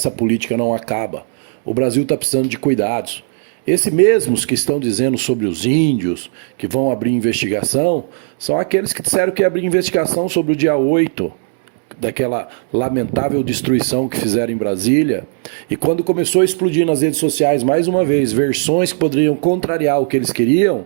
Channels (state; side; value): silent; left; digital silence